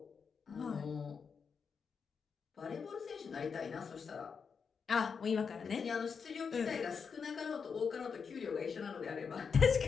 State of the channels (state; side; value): quieter; right; 6.0 dB